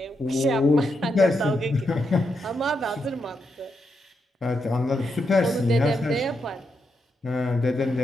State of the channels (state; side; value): normal; both; correlation 0.83